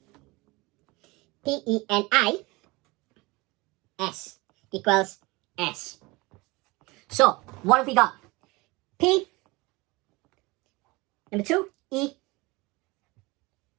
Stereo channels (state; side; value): quieter; left; 23.7 dB